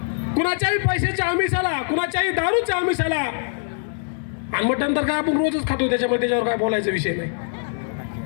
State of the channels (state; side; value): silent; right; digital silence